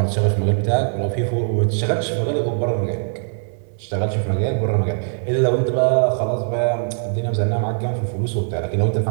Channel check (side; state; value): left; silent; digital silence